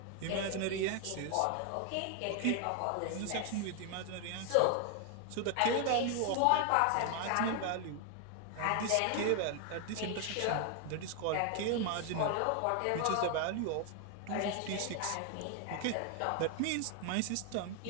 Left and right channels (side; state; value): both; different; correlation 0.00